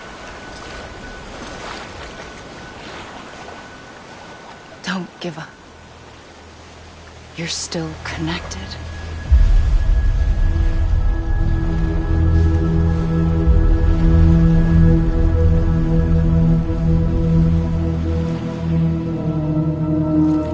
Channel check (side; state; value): both; identical; correlation 1.00